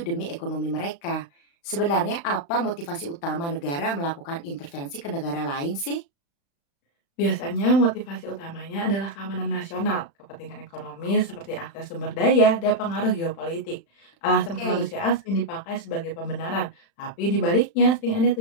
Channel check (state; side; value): late; right; 35 ms